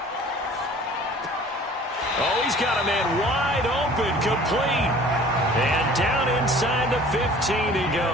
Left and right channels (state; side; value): normal; both; correlation 0.48